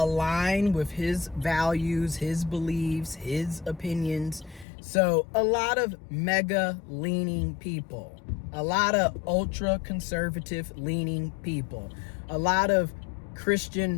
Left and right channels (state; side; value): drops out; right; at 4.7 s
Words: with his values, his beliefs, his opinions. So a lot of mega leaning people, a lot of ultra conservative leaning people, a lot of